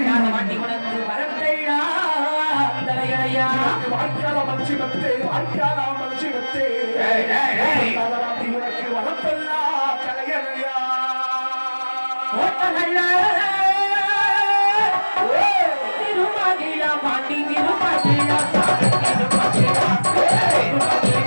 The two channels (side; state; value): both; inverted; correlation -1.00